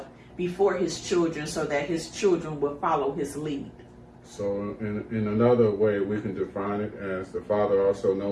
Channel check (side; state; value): both; identical; correlation 1.00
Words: before his children so that his children will follow his lead. So in another way, we can define it as the father also